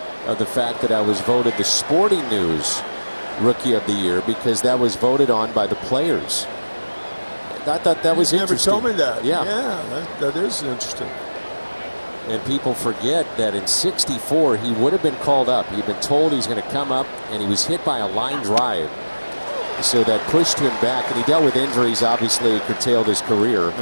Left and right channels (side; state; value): both; inverted; correlation -1.00